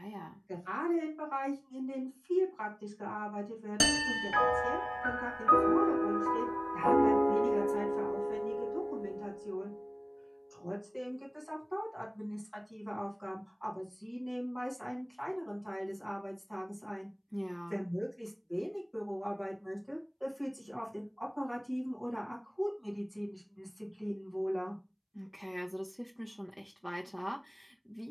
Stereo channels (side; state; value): both; identical; correlation 1.00